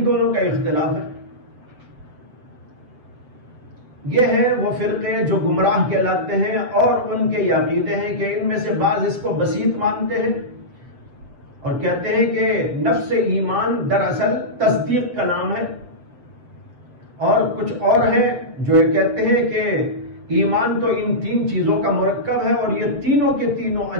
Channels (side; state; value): left; late; 7.7 ms